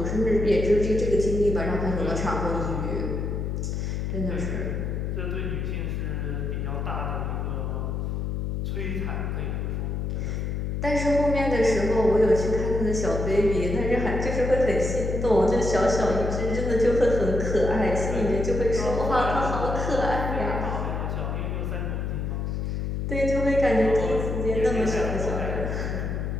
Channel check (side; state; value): left; noise; hum, 2 dB below the sound